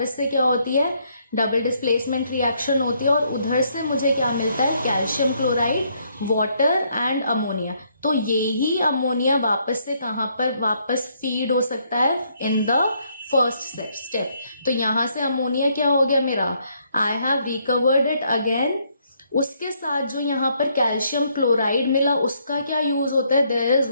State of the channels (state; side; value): inverted; both; correlation -0.71